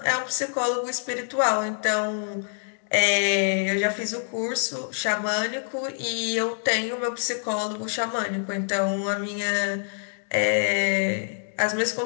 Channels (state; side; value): silent; right; digital silence